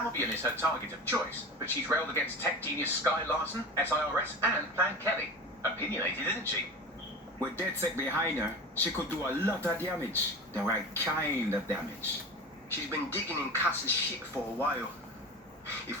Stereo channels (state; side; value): normal; both; correlation 0.31